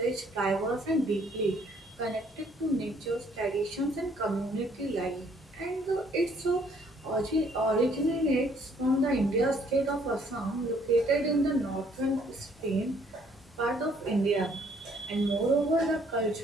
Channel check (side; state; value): both; normal; correlation 0.64